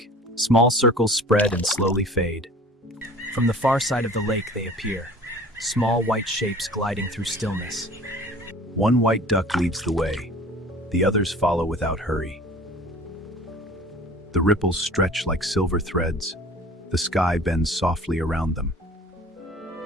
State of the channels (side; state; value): both; normal; correlation 0.45